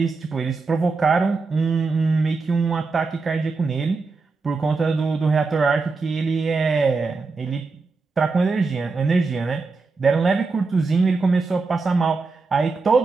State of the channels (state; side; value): quieter; left; 4.1 dB